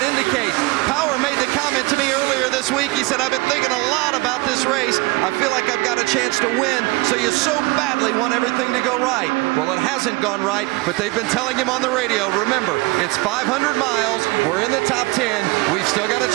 indicate. Power made the comment to me earlier this week. He said, I've been thinking a lot about this race. I feel like I've got a chance to win, so you so badly want everything to go right. Well, it hasn't gone right, but they've been telling him on the radio, remember, it's 500 miles. We're in the top 10. We've still got a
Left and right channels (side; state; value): left; quieter; 23.7 dB